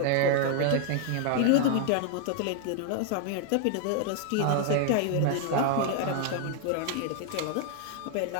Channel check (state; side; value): different; both; correlation 0.00